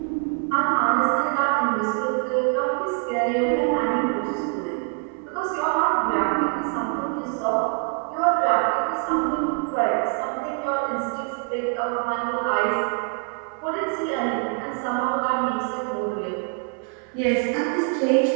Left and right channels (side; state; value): left; quieter; 39.0 dB